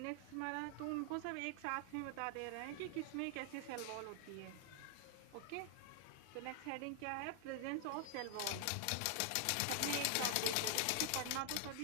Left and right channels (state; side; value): different; both; correlation 0.00